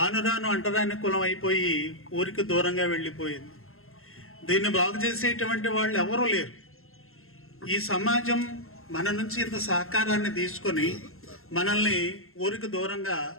రాను అంటరాని కులం అయిపోయి ఊరికి దూరంగా వెళ్ళిపోయింది. దీన్ని బాగు చేసేటువంటి వాళ్ళు ఎవరూ లేరు. ఈ సమాజం మన నుంచి ఇంత సహకారాన్ని తీసుకొని మనల్ని ఊరికి దూరంగా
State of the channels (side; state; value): right; late; 0.62 ms